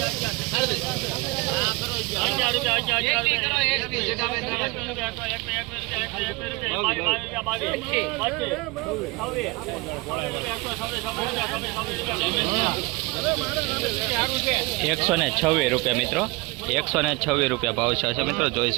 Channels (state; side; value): quieter; left; 24.7 dB